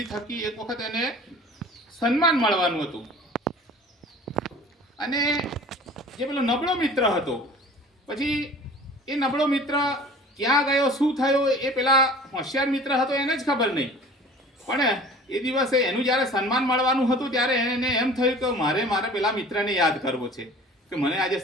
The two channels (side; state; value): both; normal; correlation 0.45